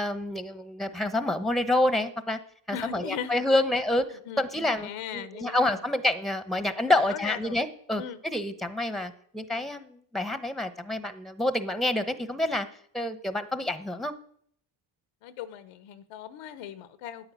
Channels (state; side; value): normal; both; correlation 0.75